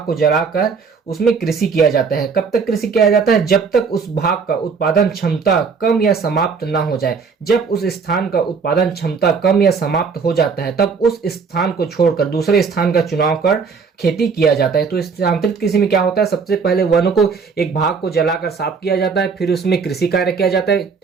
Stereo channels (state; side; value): quieter; left; 5.4 dB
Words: को जलाकर उसमें कृषि किया जाता है। कब तक कृषि किया जाता है? जब तक उस भाग का उत्पादन क्षमता कम या समाप्त ना हो जाए। जब उस स्थान का उत्पादन क्षमता कम या समाप्त हो जाता है तब उस स्थान को छोड़कर दूसरे स्थान का चुनाव कर खेती किया जाता है। तो स्थानांतरित कृषि में क्या होता है, सबसे पहले वनों को एक भाग को जलाकर साफ किया जाता है, फिर उसमें कृषि कार्य किया जाता है,